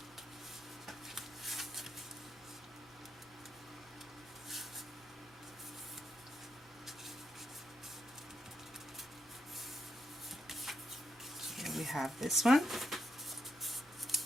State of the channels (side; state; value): both; normal; correlation 0.80